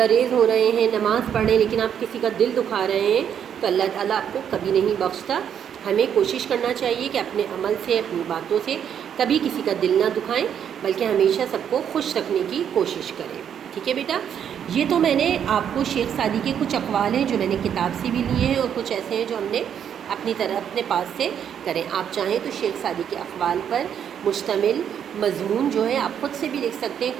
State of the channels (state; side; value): quieter; left; 8.7 dB